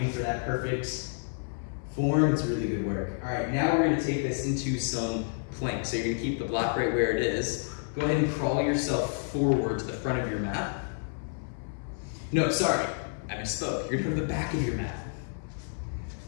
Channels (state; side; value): silent; right; 58 dB below the other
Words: for that perfect form, it's really good work. All right, now we're going to take this into some plank. So you're going to keep the block right where it is. Go ahead and crawl yourself forward to the front of your mat. No, sorry, I misspoke. You're going to go to the back of your mat.